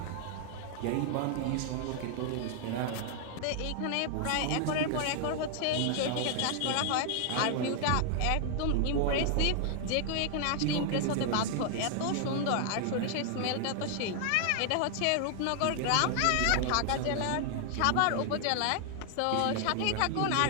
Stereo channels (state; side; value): different; both; correlation 0.00